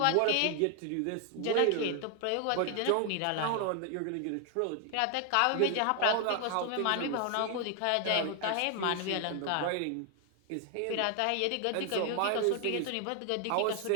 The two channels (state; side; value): different; both; correlation 0.00